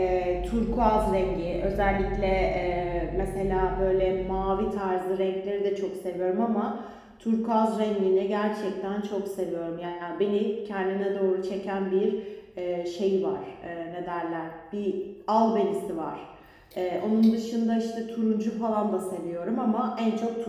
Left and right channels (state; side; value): identical; both; correlation 1.00